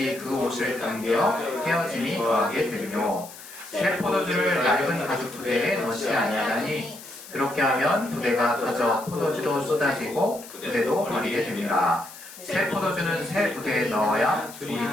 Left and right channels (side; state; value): left; noise; hiss, 16 dB below the sound